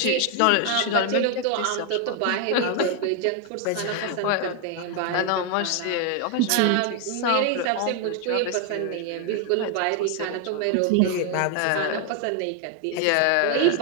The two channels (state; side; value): different; both; correlation 0.01